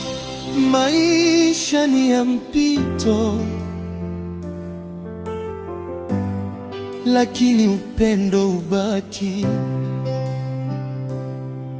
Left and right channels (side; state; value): both; identical; correlation 1.00